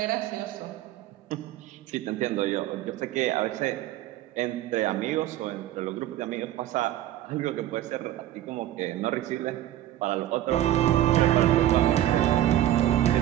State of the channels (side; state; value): left; quieter; 13.1 dB